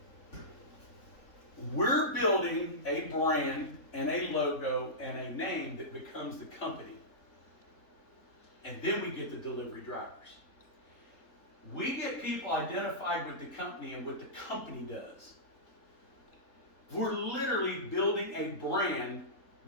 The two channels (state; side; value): late; right; 3.8 ms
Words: We're building a brand and a logo and a name that becomes the company. And then we get the delivery drivers. We get people identified with the company and what the company does. We're literally building a brand